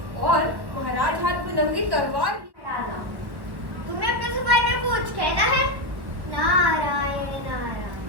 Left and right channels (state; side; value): late; left; 1.1 ms